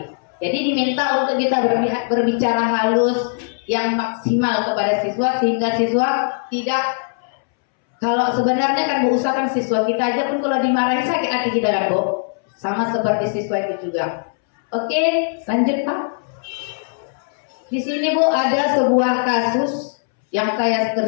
Jadi diminta untuk kita berbicara halus yang maksimal kepada siswa sehingga siswa tidak. Kalau sebenarnya kan bu, usahakan siswa kita aja pun kalau dimarahi sakit hati kita kan bu. Sama seperti siswa itu juga. Oke, lanjut Pak. Di sini Bu ada sebuah kasus yang saya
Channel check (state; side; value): silent; right; 66 dB below the other